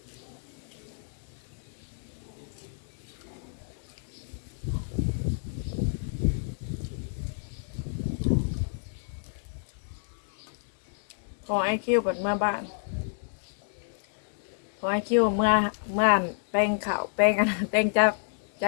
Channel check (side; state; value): right; silent; digital silence